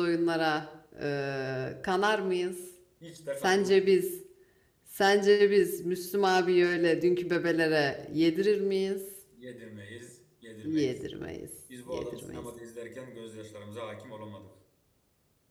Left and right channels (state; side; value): identical; both; correlation 1.00